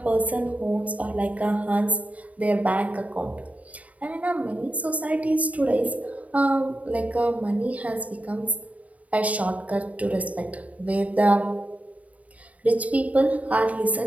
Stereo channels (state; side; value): late; left; 0.069 ms